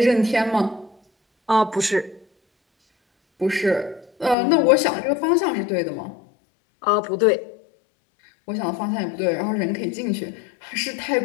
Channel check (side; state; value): right; drops out; at 4.4 s